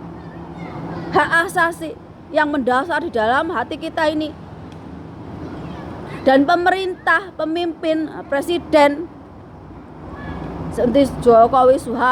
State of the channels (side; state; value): both; identical; correlation 1.00